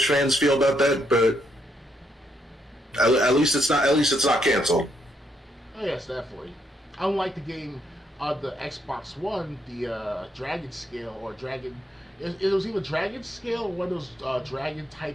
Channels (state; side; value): normal; both; correlation 0.75